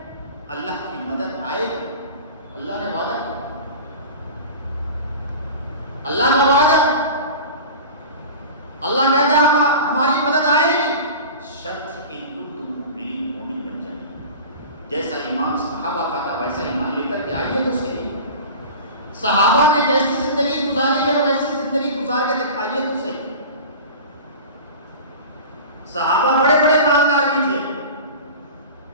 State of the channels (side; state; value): both; inverted; correlation -0.35